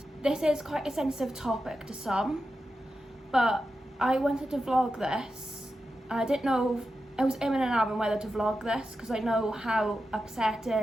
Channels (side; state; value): both; normal; correlation 0.90